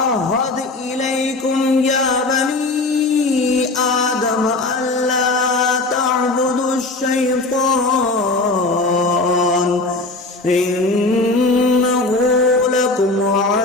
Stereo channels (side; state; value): right; quieter; 3.1 dB